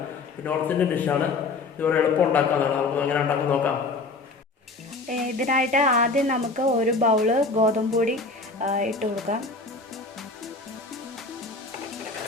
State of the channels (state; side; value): quieter; right; 3.8 dB